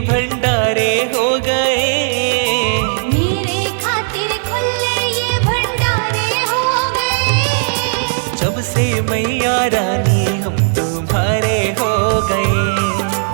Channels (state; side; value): silent; left; digital silence